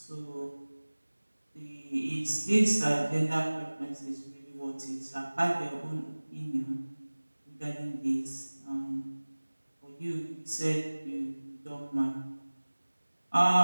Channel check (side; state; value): both; inverted; correlation -1.00